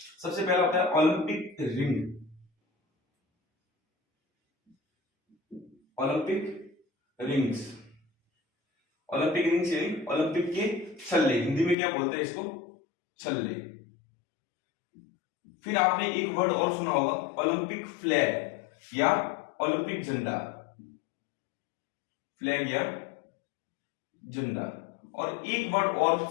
सबसे पहला होता है Olympic ring. Olympic rings, Olympic rings यानी ओलंपिक के छल्ले, हिंदी में क्या बोलते हैं इसको? छल्ले। फिर आपने एक वर्ड और सुना होगा, ओलंपिक फ्लैग या ओलंपिक झंडा। फ्लैग या झंडा। और एक वर्ड और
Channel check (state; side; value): drops out; right; at 11.8 s